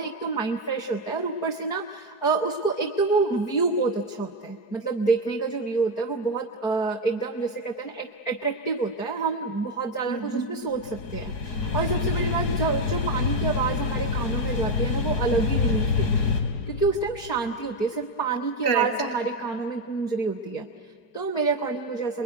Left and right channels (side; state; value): right; late; 4.7 ms